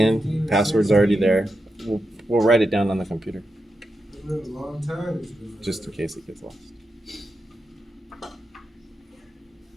Password's already there. We'll write it down on the computer. Just in case it gets lost.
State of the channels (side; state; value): both; normal; correlation 0.87